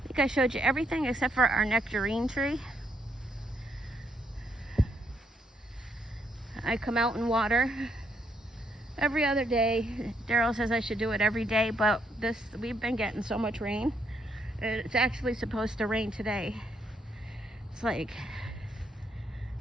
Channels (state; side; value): normal; both; correlation 0.75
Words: think I showed you everything except for our nectarine tree. I come out and water every other day. Daryl says I should do it every day, but we've been getting so much rain. It's actually supposed to rain today.